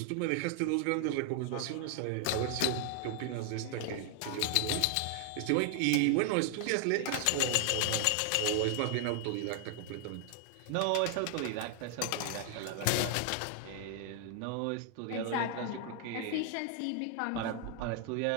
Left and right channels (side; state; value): both; different; correlation 0.00